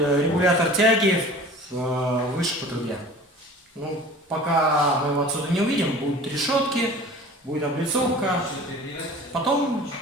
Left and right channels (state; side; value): normal; both; correlation 0.42